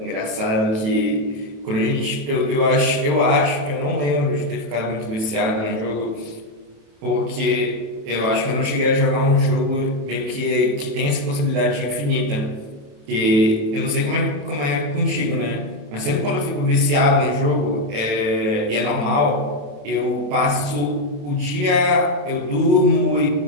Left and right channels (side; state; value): left; late; 27 ms